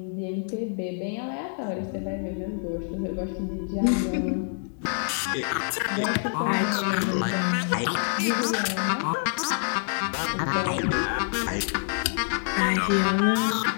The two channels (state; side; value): silent; right; digital silence